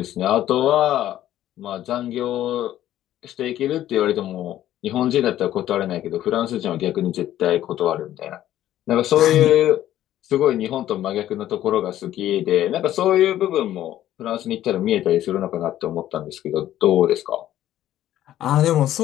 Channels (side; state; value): right; quieter; 12.8 dB